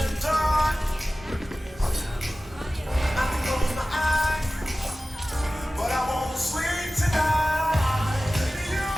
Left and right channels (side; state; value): both; normal; correlation 0.96